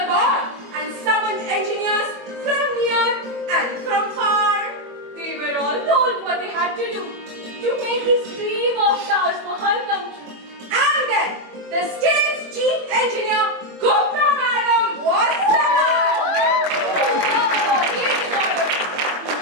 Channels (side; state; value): left; late; 21 ms